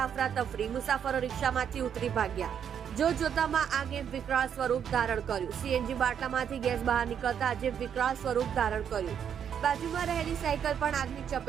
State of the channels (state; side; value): quieter; left; 8.3 dB